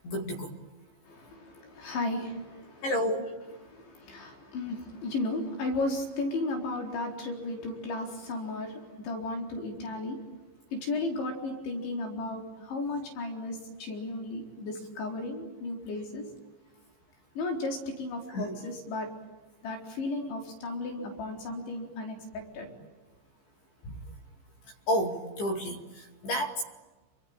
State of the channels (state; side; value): late; right; 15 ms